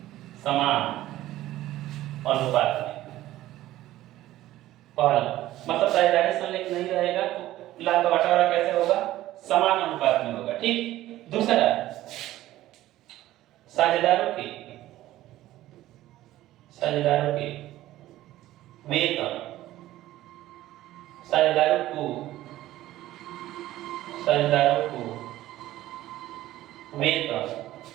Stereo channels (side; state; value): left; quieter; 15.0 dB